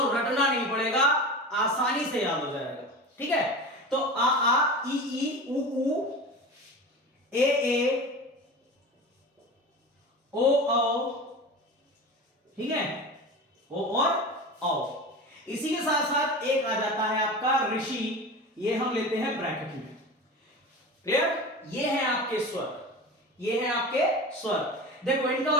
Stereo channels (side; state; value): both; normal; correlation 0.31